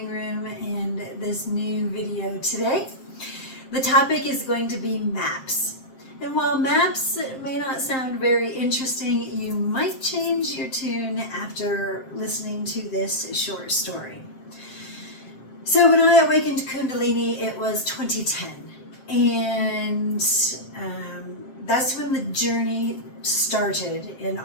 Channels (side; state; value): right; late; 7.6 ms